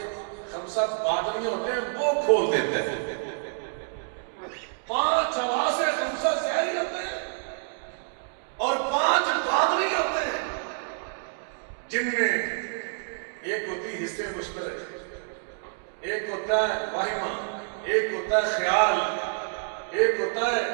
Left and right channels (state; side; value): silent; left; digital silence